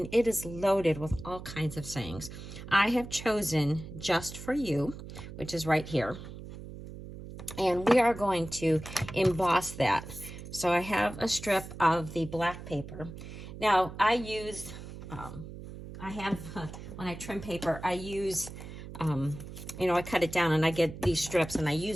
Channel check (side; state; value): right; noise; hum, 12 dB below the sound